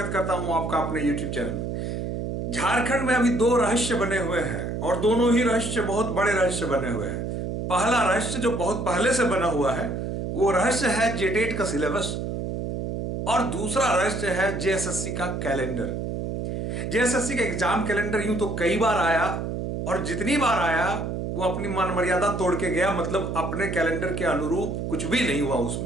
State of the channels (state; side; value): noise; right; hum, 3 dB below the sound